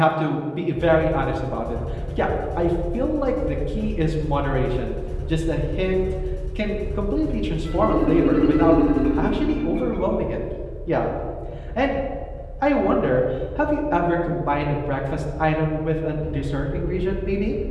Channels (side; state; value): both; identical; correlation 1.00